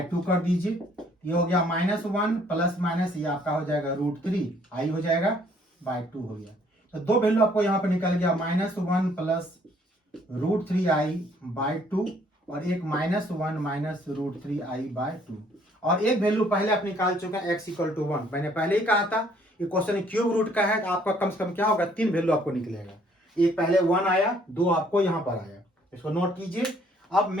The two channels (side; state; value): both; normal; correlation 0.63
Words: 2 कर दीजिए। ये हो गया -1 प्लस माइनस ये आपका हो जाएगा √3 आई हो जाएगा बाय 2 हो गया। तो दो वैल्यू आपको यहाँ पे निकल गया, -1 प्लस √3i बाय 2 और एक -1 माइनस √3i बाय 2, और एक वैल्यू पहले आप निकाल चुके हैं x इक्वल टू 1। मैंने पहले ही कहा था ये क्वेश्चन क्यूब रूट का है, तो आपका कम से कम क्या होगा, 3 वैल्यू आपको निकलेगा। एक पहले 1 आया, 2 आपको यहाँ पर आया, इसको नोट कीजिए। अब